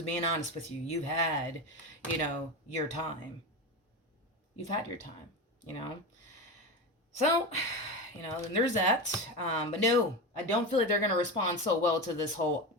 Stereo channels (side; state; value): both; normal; correlation 0.21